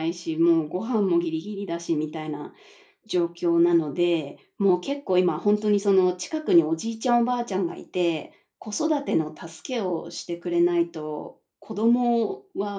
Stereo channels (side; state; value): both; identical; correlation 1.00